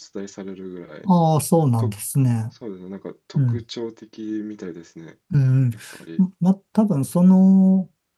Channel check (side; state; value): both; identical; correlation 1.00